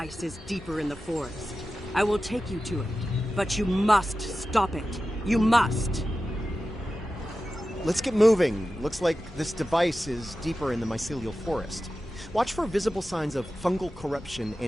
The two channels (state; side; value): normal; both; correlation 0.93